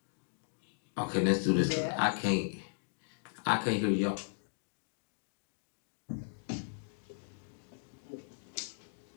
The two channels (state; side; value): silent; right; digital silence